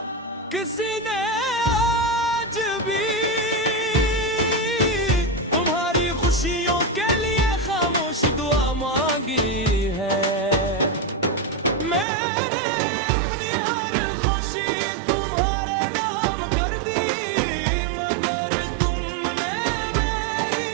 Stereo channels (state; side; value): drops out; left; at 12.1 s